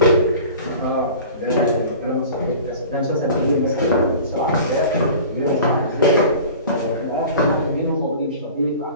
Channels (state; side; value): inverted; both; correlation -0.41